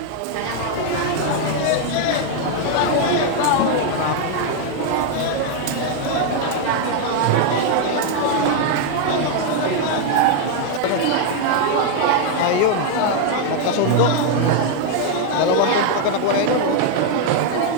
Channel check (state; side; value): different; both; correlation 0.00